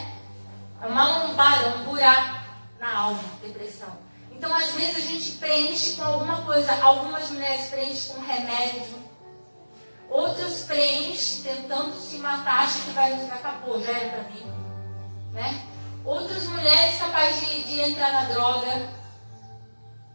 É uma lombada, um buraco na alma, depressão. Então, às vezes, a gente preenche com alguma coisa. Algumas mulheres preenchem com remédio. Outras preenchem tentando se matar, acham que acabou, já era pra mim. Né? Outras mulheres capazes de entrar na droga.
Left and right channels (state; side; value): inverted; both; correlation -1.00